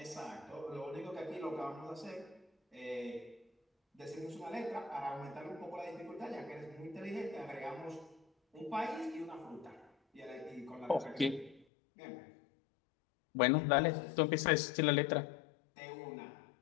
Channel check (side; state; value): right; drops out; at 11.7 s